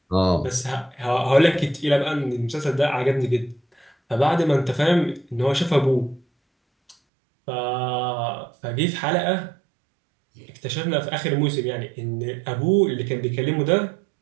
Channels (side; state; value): left; drops out; at 7.0 s